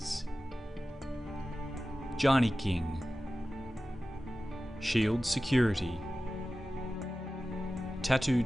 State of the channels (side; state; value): both; normal; correlation 0.95